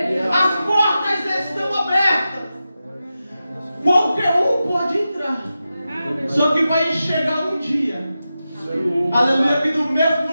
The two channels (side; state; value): both; inverted; correlation -0.91